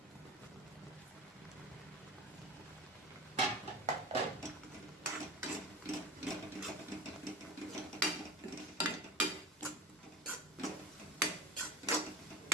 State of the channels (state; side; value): normal; both; correlation 0.32